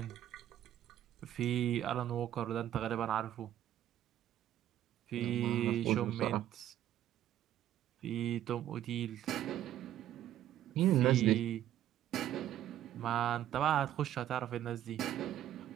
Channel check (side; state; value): left; quieter; 12.0 dB